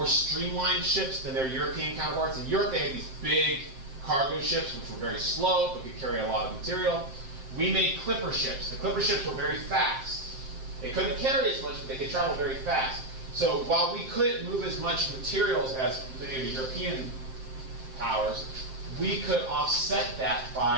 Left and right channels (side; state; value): left; late; 7.6 ms